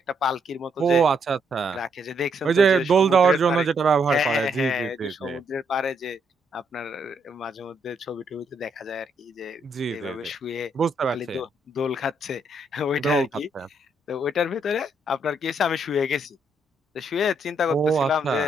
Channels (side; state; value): both; normal; correlation 0.74